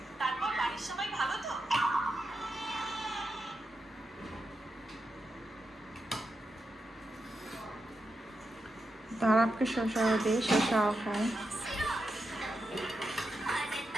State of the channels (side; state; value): both; normal; correlation 0.87